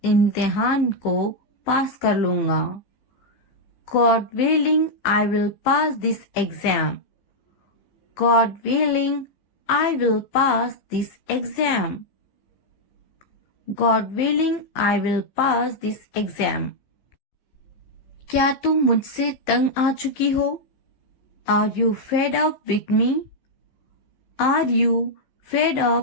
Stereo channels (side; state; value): right; late; 16 ms